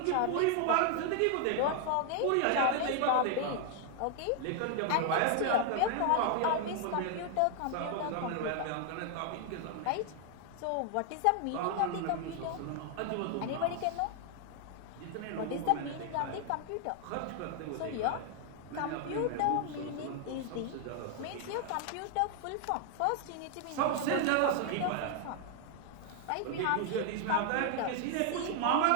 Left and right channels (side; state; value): both; different; correlation 0.00